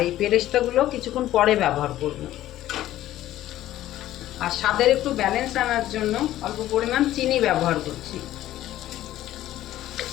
এই পেরেস্তাগুলো কিছুক্ষণ পরে ব্যবহার করব। আর স্বাদের একটু ব্যালেন্স আনার জন্য অল্প পরিমাণ চিনি ব্যবহার করছি।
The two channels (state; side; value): quieter; right; 13.9 dB